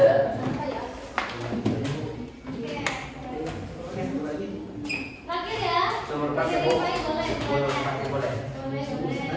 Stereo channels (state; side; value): identical; both; correlation 1.00